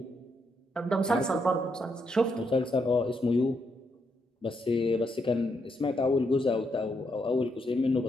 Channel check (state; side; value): normal; both; correlation 0.78